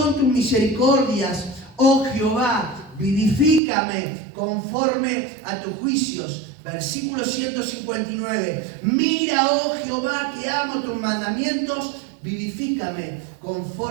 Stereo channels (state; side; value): drops out; left; at 3.6 s